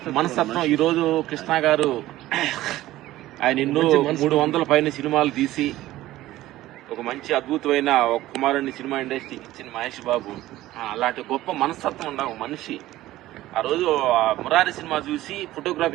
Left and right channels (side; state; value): left; quieter; 15.7 dB